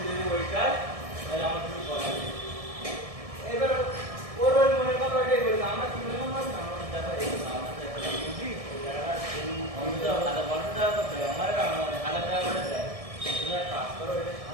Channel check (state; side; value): late; left; 1.7 ms